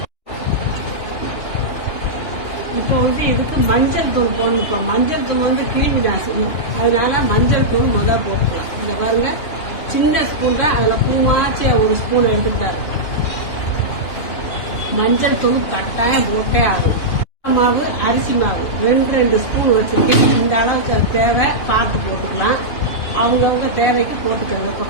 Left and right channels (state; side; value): late; right; 2.9 ms